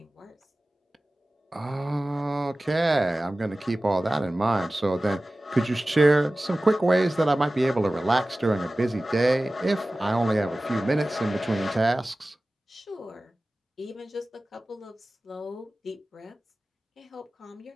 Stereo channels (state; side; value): normal; both; correlation 0.97